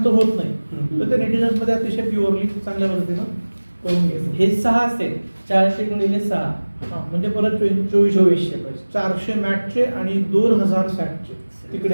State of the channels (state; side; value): inverted; both; correlation -1.00